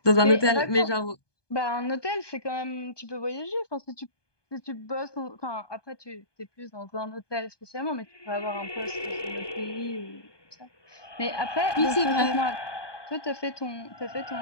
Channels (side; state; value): right; late; 1.2 ms